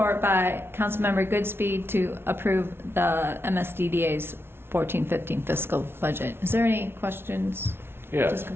by Councilmember Goodspeed to approve the MSDDA's 14-15 fiscal budget. Is there any questions? Yes,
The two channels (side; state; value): left; late; 0.12 ms